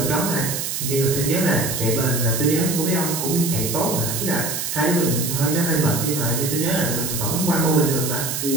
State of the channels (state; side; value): noise; right; hiss, 3 dB below the sound